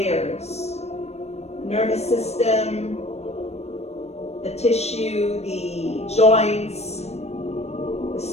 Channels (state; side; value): late; right; 0.31 ms